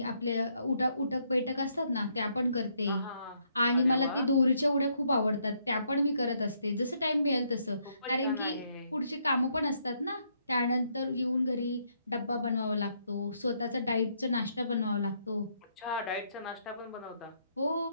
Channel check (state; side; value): inverted; both; correlation -0.73